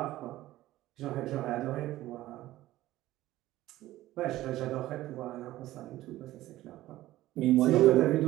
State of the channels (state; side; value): quieter; left; 15.7 dB